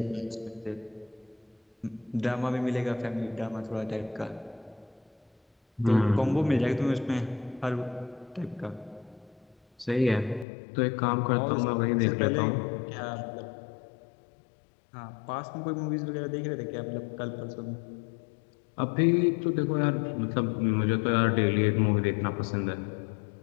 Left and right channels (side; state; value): right; drops out; at 10.5 s